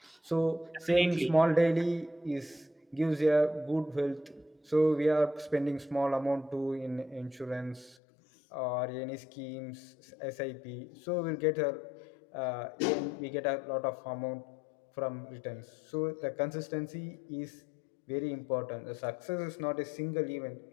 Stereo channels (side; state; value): right; drops out; at 8.0 s